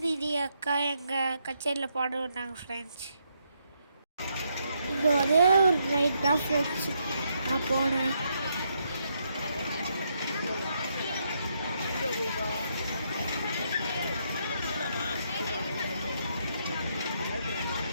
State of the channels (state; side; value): inverted; both; correlation -0.77